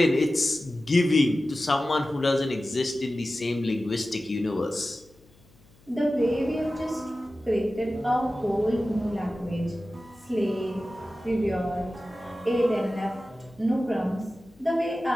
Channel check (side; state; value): left; noise; hum, 29 dB below the sound